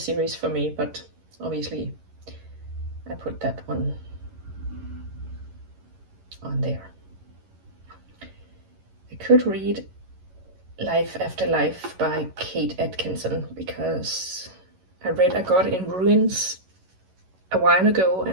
for me, but obviously I put that one on there. I could read Life After Life by Kate Atkinson, because I read A God in Ruins a while ago, and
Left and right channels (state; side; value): late; left; 11 ms